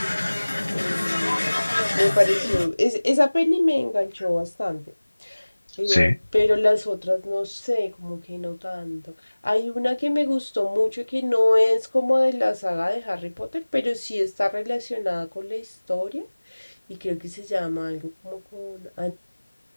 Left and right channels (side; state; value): both; inverted; correlation -1.00